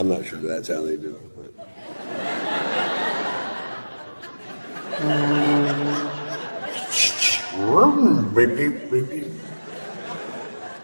not sure that's how they do it. Beep, beep, beep, beep.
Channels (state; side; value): inverted; both; correlation -1.00